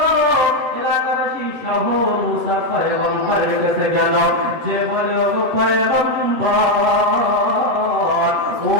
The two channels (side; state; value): left; late; 7.9 ms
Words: এলাকাবাসী সহ মুসা পয়গম্বরের কাছে গেল, যে বলে ও পয়গম্বর,